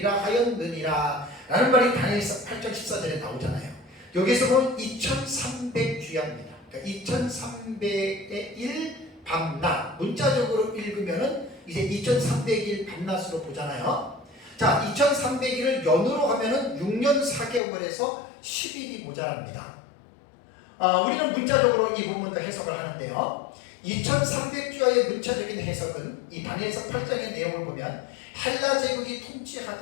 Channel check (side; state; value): right; drops out; at 17.6 s